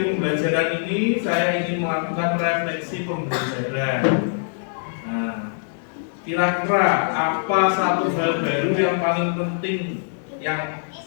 pembelajaran ini, saya ingin melakukan refleksi pembelajaran. Nah, kira-kira apa satu hal baru yang paling penting yang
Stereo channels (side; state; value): right; silent; digital silence